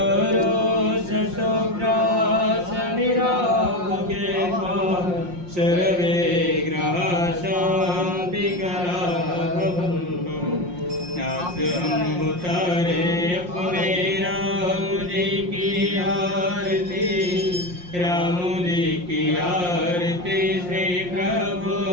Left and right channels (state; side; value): late; left; 5.6 ms